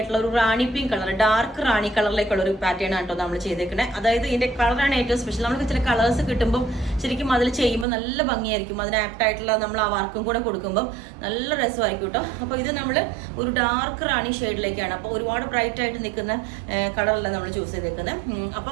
ഒരു റാണി പിങ്ക് കളർ, ഡാർക്ക് റാണി കളറിലേക്കുള്ള ഒരു പാറ്റേൺ ആണ് കേട്ടോ നമ്മൾ ചെയ്തേക്കുന്നത്. അതായത് ഇതിന്റെ കളറാണ് ഏറ്റവും സ്പെഷ്യൽ. നമുക്ക് ചില കളേഴ്സ് കിട്ടുമ്പോൾ ശരിക്കും അതിൽ ചെയ്യുമ്പോൾ നല്ല ഭംഗിയായിരിക്കും. അതിന് ആപ്റ്റ് ആയിട്ടുള്ള നമ്മൾ ആ വർക്കും കൂടെ കൊടുക്കുമ്പോൾ നല്ല രസമായിരിക്കും കേട്ടോ. അപ്പോൾ ഇത് നമ്മൾ ഒരു ഡാർക്ക് റാണി ഷെയ്ഡിലേക്കാണ്, അപ്പോൾ ഒരുപാട് ബ്രൈറ്റ് ആയിട്ട് നിൽക്കുന്ന കളറല്ല നമ്മൾ ചൂസ് ചെയ്തേക്കുന്നത്.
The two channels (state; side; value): drops out; left; at 7.9 s